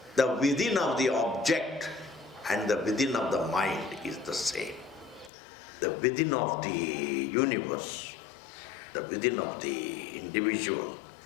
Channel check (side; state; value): right; drops out; at 5.3 s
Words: The within of the object and the within of the mind is the same. The within of the universe, the within of the individual